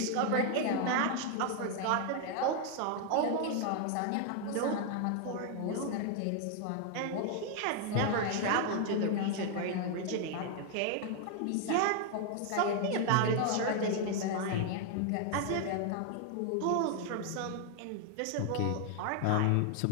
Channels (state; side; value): different; both; correlation 0.00